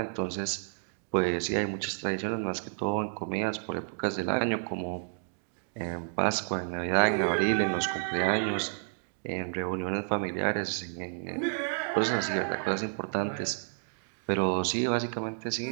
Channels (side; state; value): left; silent; digital silence